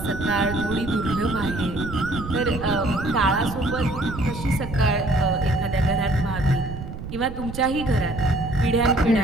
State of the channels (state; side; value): noise; right; rumble, 9 dB below the sound